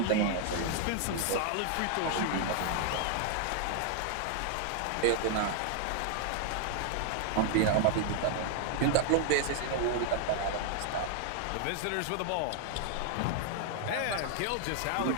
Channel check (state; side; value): different; both; correlation 0.00